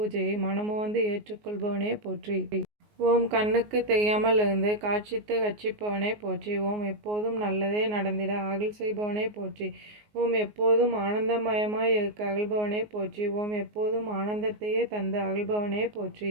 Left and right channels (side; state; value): left; late; 19 ms